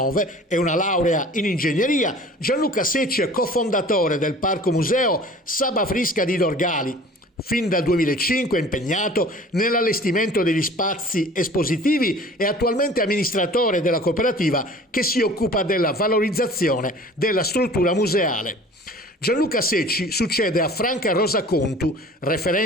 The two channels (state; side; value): normal; both; correlation 0.45